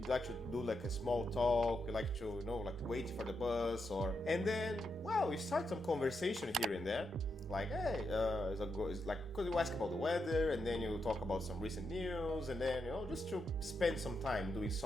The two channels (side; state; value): both; normal; correlation 0.83